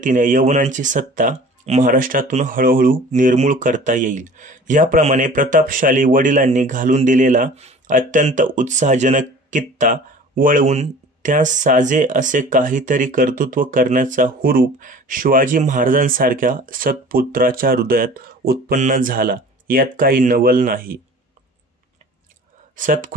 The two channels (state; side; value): normal; both; correlation 0.44